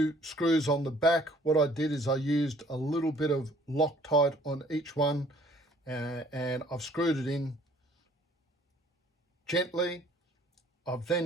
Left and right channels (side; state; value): both; normal; correlation 0.57